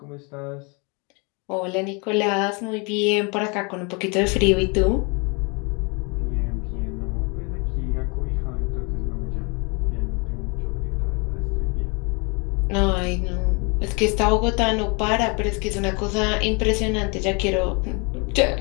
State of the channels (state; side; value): quieter; right; 31.7 dB